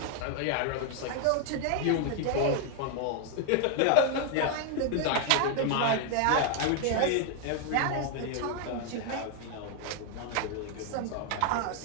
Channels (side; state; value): both; different; correlation 0.00